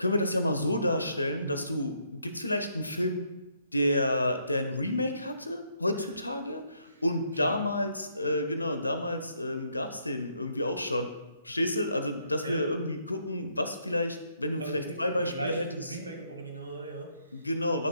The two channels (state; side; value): inverted; both; correlation -0.72